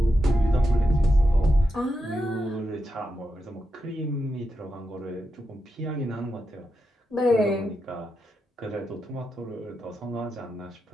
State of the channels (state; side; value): normal; both; correlation 0.87